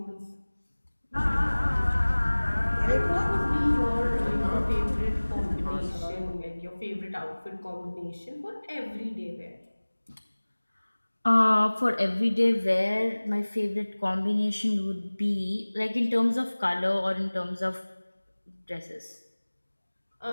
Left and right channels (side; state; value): both; inverted; correlation -1.00